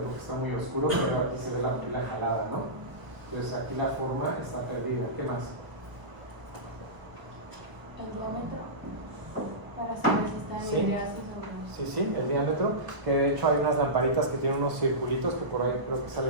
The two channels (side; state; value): left; late; 1.0 ms